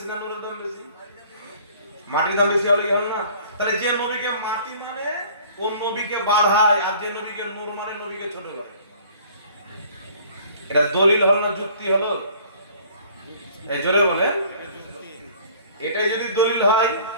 না নূরের দাম বেশি? মাটির দাম বেশি হলে কি হবে না? তাহলে যে নবীকে মাটি মানে কোন নবীকে বাড়ায়, আর যে নবীকে নূর মানে নবীকে ছোট করে। এটা দলিল হলো না যুক্তি হলো? এই জোরে বলেন। এটাই যদি দলিল হয়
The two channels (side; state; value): both; inverted; correlation -0.52